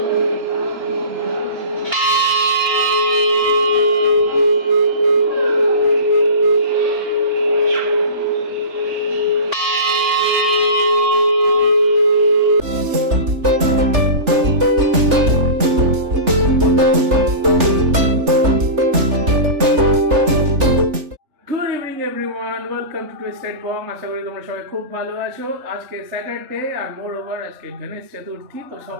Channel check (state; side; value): late; left; 3.4 ms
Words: ওয়েলকাম টু টুইস্টেড বং। আশা করি তোমরা সবাই খুব ভালো আছো। আজকে স্যাটারডে আর মোর ওভার আজকে গণেশ চতুর্থী, তো